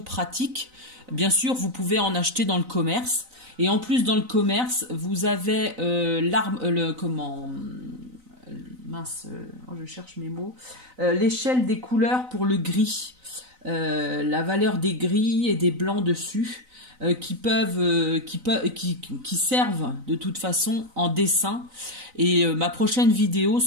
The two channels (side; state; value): left; late; 3.9 ms